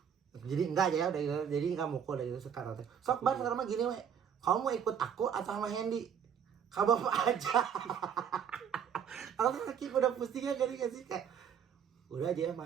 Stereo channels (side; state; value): left; quieter; 7.9 dB